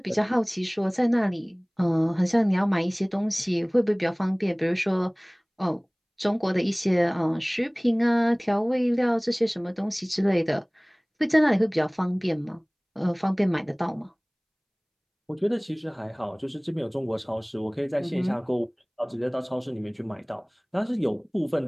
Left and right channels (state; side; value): identical; both; correlation 1.00